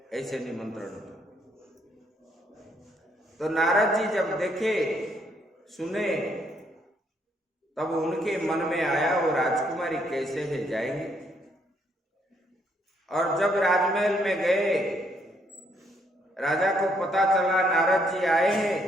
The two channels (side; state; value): both; normal; correlation 0.71